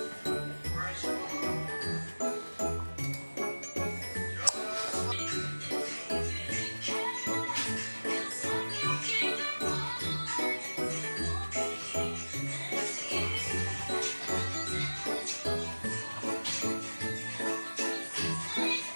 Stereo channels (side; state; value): both; inverted; correlation -1.00